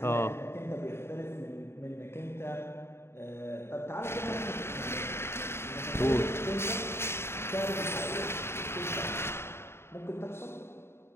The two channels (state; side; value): late; right; 0.12 ms